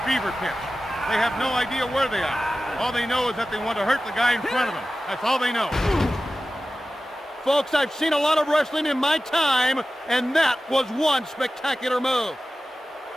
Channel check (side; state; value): both; normal; correlation 0.95